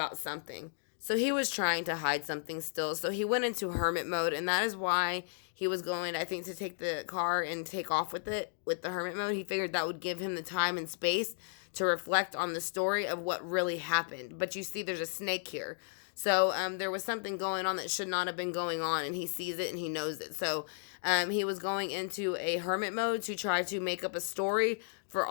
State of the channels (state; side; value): silent; right; digital silence